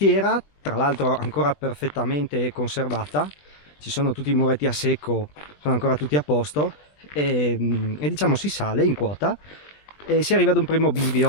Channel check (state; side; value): late; right; 20 ms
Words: tra l'altro ancora perfettamente conservata, ci sono tutti i muretti a secco, sono ancora tutti a posto e diciamo si sale in quota e si arriva ad un primo